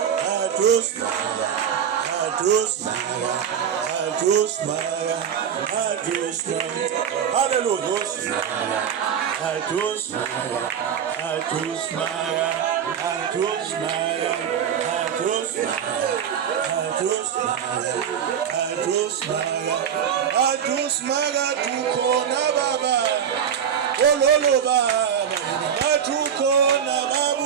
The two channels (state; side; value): quieter; left; 8.3 dB